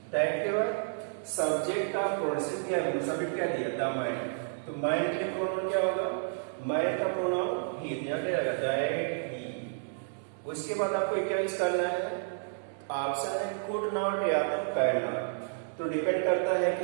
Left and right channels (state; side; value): silent; left; digital silence